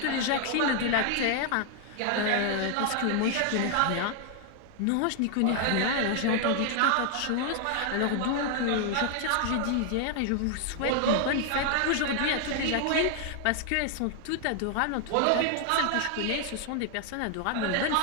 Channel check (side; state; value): both; different; correlation 0.00